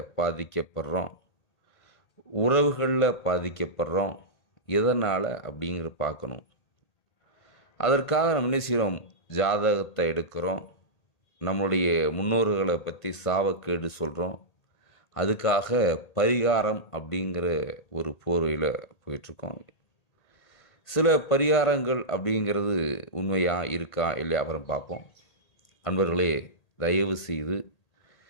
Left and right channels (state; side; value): late; right; 1.8 ms